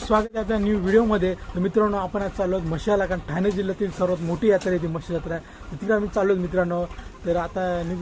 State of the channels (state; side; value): identical; both; correlation 1.00